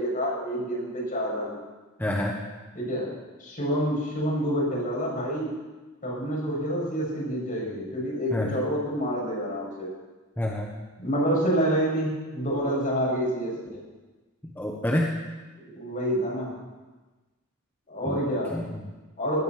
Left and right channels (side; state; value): both; normal; correlation 0.25